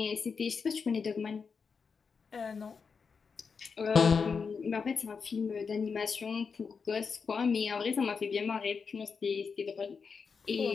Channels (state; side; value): quieter; right; 5.5 dB